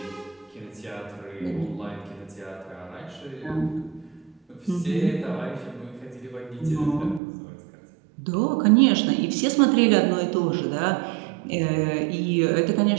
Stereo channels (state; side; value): drops out; left; at 7.2 s